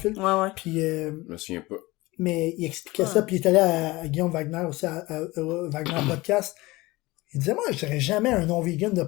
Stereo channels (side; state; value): right; quieter; 20.9 dB